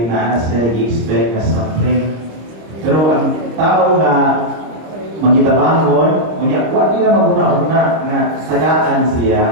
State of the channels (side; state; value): left; late; 26 ms